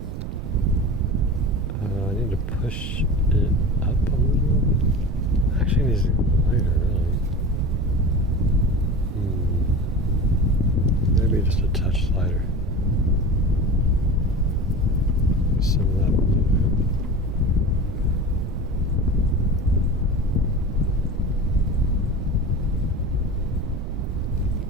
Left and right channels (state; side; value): noise; right; rumble, 5 dB below the sound